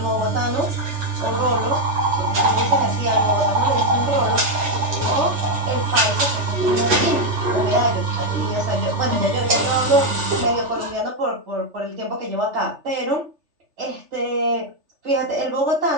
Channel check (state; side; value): late; left; 3.4 ms